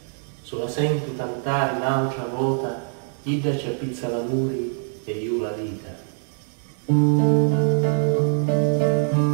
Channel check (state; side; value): silent; left; digital silence